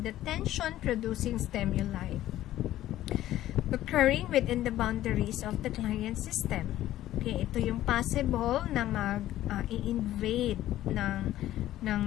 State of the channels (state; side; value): quieter; right; 13.8 dB